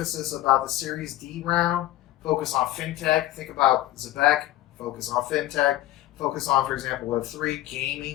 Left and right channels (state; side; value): quieter; right; 15.1 dB